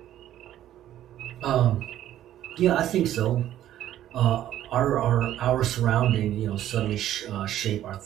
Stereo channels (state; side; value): quieter; left; 12.2 dB